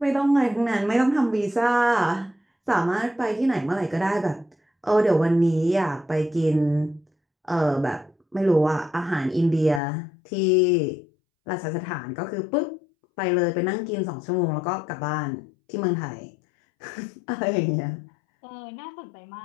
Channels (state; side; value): drops out; right; at 9.8 s